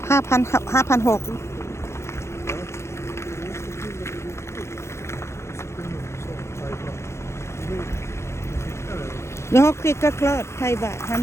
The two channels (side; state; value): right; late; 0.13 ms